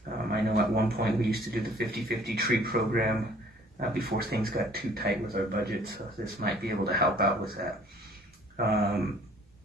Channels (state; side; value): normal; both; correlation 0.55